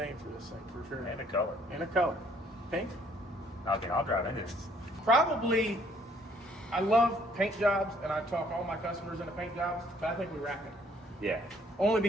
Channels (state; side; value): normal; both; correlation 0.63